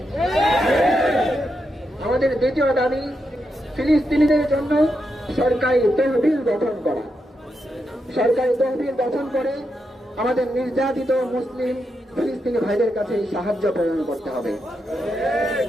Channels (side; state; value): both; normal; correlation 0.84